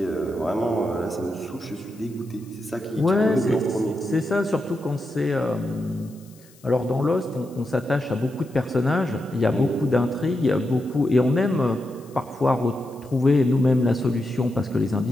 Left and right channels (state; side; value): noise; left; hiss, 27 dB below the sound